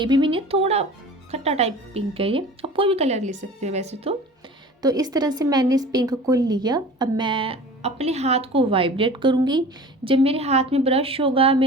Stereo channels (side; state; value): both; normal; correlation 0.40